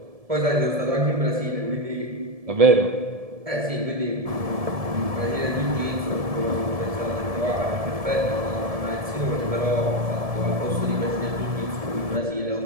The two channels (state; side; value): late; left; 1.7 ms